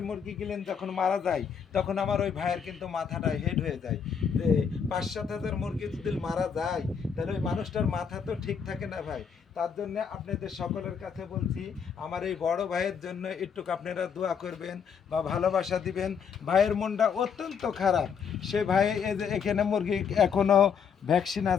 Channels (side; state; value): right; quieter; 6.8 dB